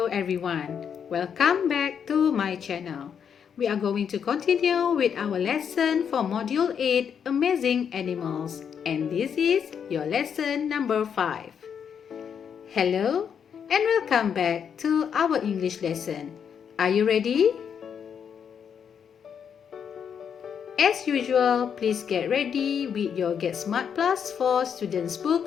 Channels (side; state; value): right; quieter; 7.6 dB